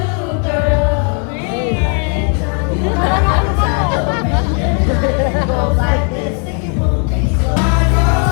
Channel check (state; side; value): quieter; right; 38.9 dB